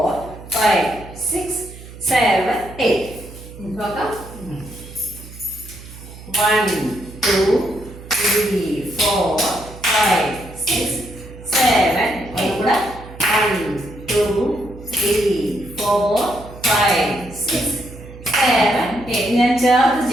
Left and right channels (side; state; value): right; noise; hum, 16 dB below the sound